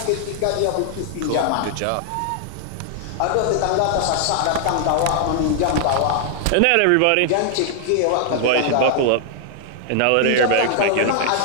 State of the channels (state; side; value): different; both; correlation -0.01